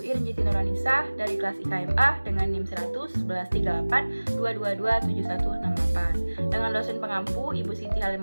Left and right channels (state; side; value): inverted; both; correlation -1.00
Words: Irnjiti Nuranisah dari kelas IKMA dengan NIM 100113822271168 dengan dosen pengampu Ibu Siti